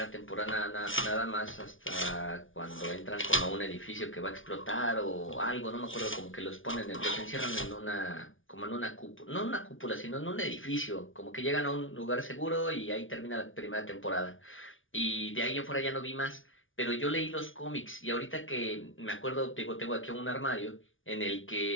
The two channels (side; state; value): right; late; 0.57 ms